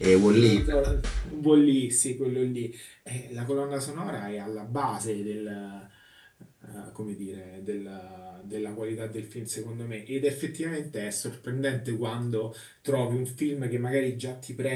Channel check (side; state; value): both; identical; correlation 1.00